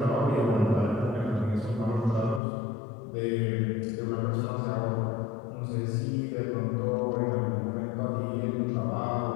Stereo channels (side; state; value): right; drops out; at 2.4 s